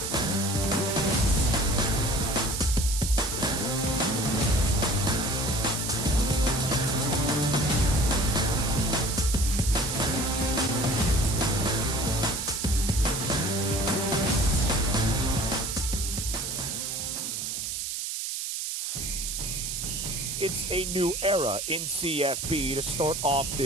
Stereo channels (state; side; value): noise; right; hiss, 3 dB below the sound